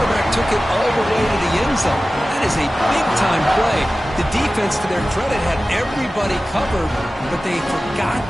took it all the way to the end zone. That is a big-time play. The defense, to their credit, had everybody covered, but they forgot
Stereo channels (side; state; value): both; normal; correlation 0.96